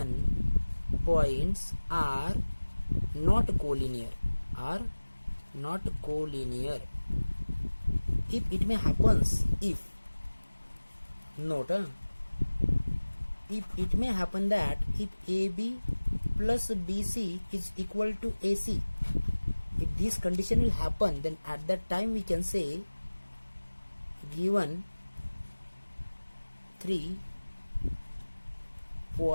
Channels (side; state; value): both; inverted; correlation -1.00